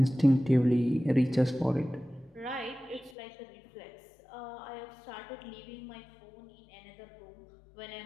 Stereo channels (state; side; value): drops out; right; at 3.2 s